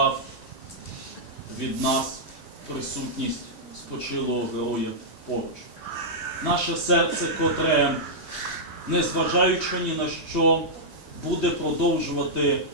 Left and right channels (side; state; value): both; normal; correlation -0.09